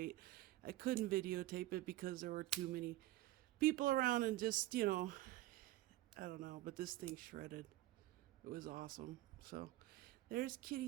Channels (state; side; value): quieter; left; 16.4 dB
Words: I couldn't videotape it because there were too many people around and just, I don't know, but this thing shredded. It was awesome. So there's